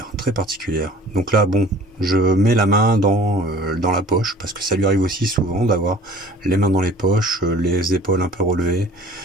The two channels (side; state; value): both; normal; correlation 0.48